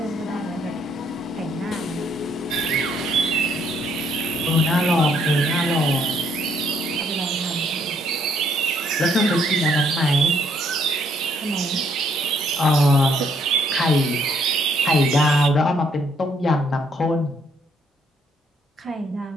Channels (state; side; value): normal; both; correlation 0.68